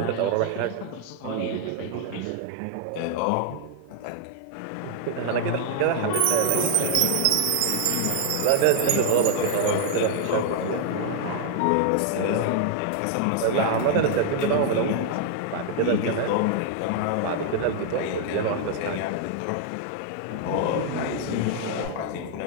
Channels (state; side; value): different; both; correlation -0.01